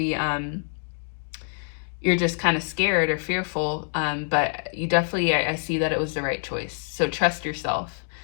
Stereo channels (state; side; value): silent; right; 61 dB below the other